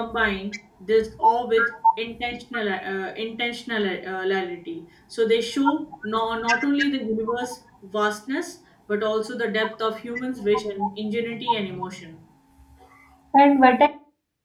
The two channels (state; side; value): identical; both; correlation 1.00